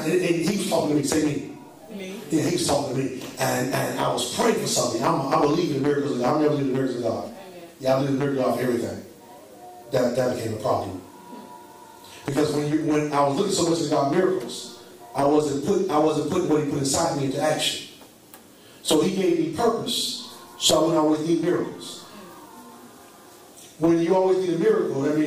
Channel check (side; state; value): both; identical; correlation 1.00